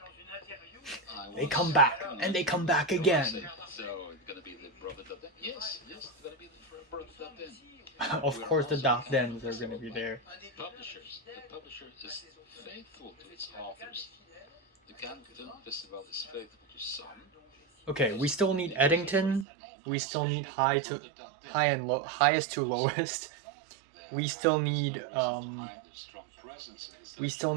They come back, and they come back again. So it's gonna be the brother Dardenne. Yes, it's gonna be the brother Dardenne. Of course, the Dardennes are gonna be there. The publisher is faithful to its authors. The Cannes Film Festival is faithful to some. Okay, we still need Eddington. We still need highest to lowest. We still need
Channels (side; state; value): left; drops out; at 19.5 s